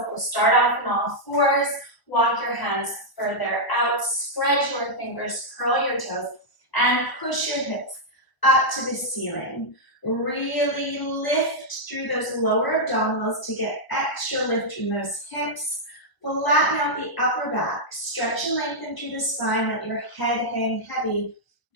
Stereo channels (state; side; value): late; right; 1.2 ms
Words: we'll start off on all fours, walk your hands further out, spread your fingers, curl your toes, and push your hips up to the ceiling. Really lift through those lower abdominals to get extra lift from those hips. Flatten out the upper back. Stretch and lengthen through the spine. Let your head hang heavy